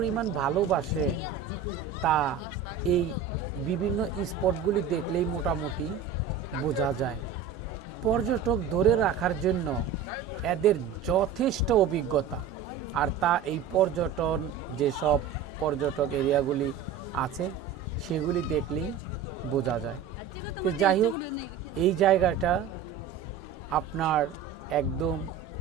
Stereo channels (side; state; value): left; quieter; 6.9 dB